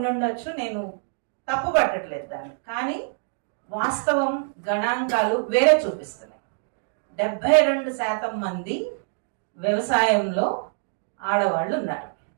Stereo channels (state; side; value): silent; left; digital silence